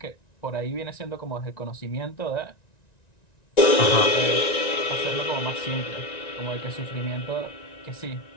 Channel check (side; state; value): right; late; 1.9 ms